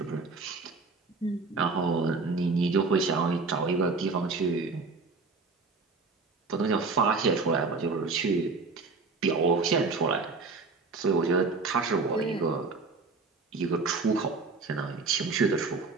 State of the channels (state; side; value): quieter; left; 4.1 dB